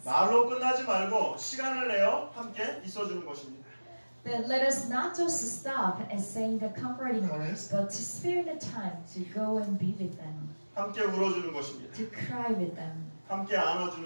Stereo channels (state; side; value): inverted; both; correlation -1.00